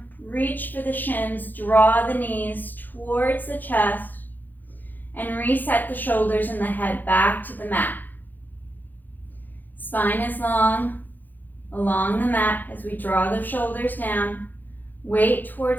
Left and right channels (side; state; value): right; late; 0.086 ms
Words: reach for the shins, draw the knees towards the chest, and reset the shoulders and the head back to the mat. Spine is long along the mat as we draw the shoulders down. Weight